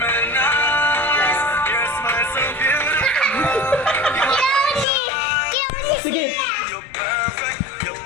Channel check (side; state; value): right; drops out; at 4.9 s